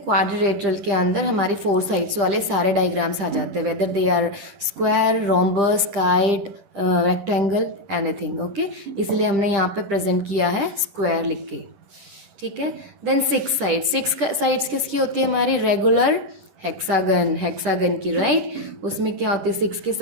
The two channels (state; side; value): late; left; 11 ms